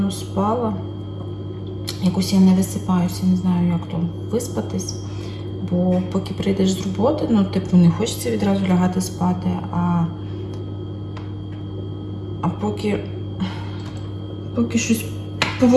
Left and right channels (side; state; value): both; identical; correlation 1.00